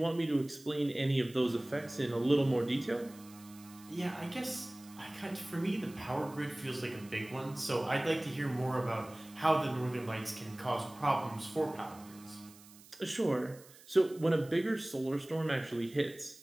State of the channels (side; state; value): right; noise; hiss, 22 dB below the sound